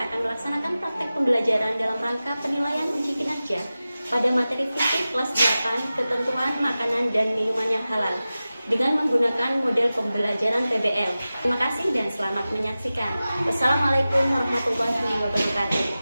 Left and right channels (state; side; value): inverted; both; correlation -0.95